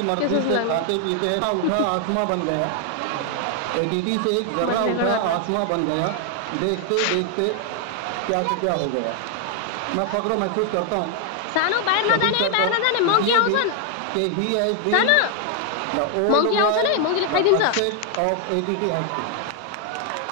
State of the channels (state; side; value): different; both; correlation 0.00